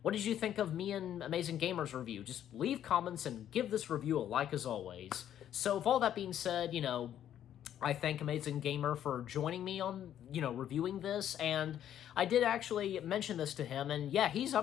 what did you think of me and Amazing Gamer's review? Just leave comments and give this review a like as always. So with all that being said, I thank Amazing Gamer for joining me on, reviewing this, and I did actually mention this to him, and yeah, he's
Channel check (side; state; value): right; quieter; 10.7 dB